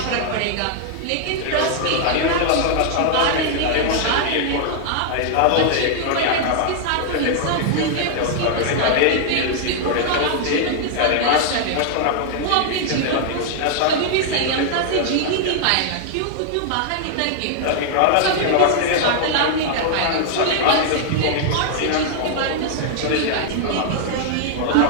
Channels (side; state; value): both; different; correlation -0.01